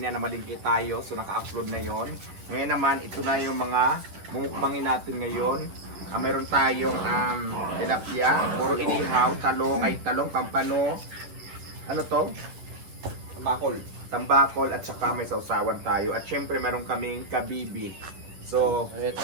na malingki tayo, so naka-upload na yon. Ngayon naman, ito na yung mga mumukbangin natin ngayon. Meron tayong tilapia, puro inihaw, talong, pampano. Ano to? Tambakol at saka may sausawan tayo. At syempre meron kaming kabibi. So,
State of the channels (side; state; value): left; late; 11 ms